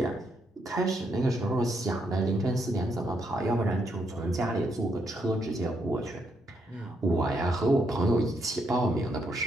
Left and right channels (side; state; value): both; normal; correlation 0.76